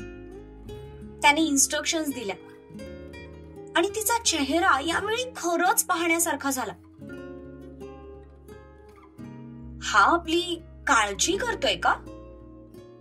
त्याने इन्स्ट्रक्शन्स दिल्या आणि तिचा चेहरा यावेळी खरंच पाहण्यासारखा झाला. हा आपली काळजी करतोय का?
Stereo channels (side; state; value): both; identical; correlation 1.00